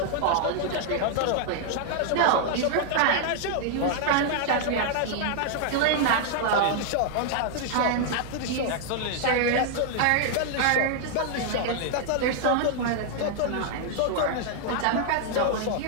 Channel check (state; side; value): different; both; correlation -0.01